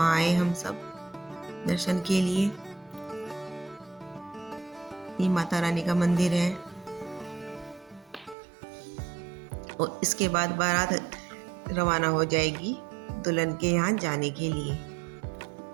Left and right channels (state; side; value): drops out; left; at 8.3 s